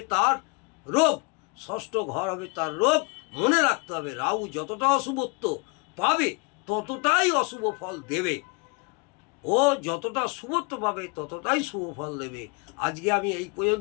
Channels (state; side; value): quieter; right; 31.1 dB